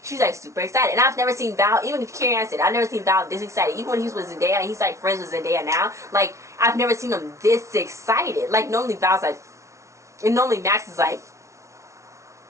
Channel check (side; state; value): left; late; 0.14 ms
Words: She's like super excited, and I've never seen Val. Even Karen said, "I've never seen Val this excited." Even when he was with Zendaya, and he's like friends with Zendaya now. Like I've never seen him this excited. Like normally Val's like, and normally Max is like.